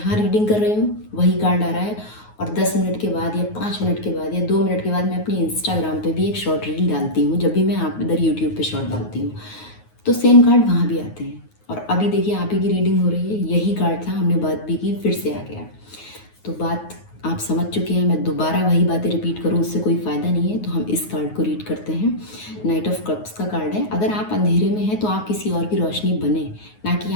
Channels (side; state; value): right; late; 9.5 ms